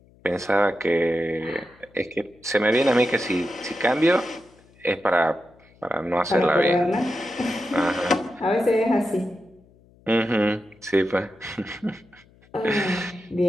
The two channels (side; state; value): left; noise; hum, 29 dB below the sound